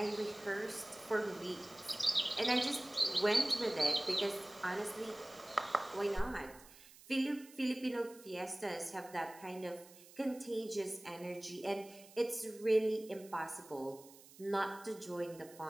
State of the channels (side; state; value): right; noise; hiss, 21 dB below the sound